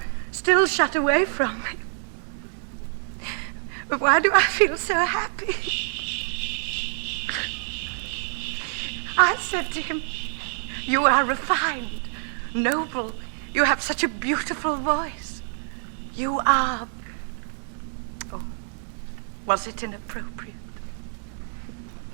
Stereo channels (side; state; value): left; silent; digital silence